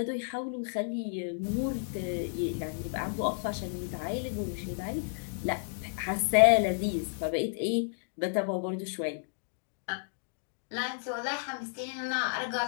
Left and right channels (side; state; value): right; silent; digital silence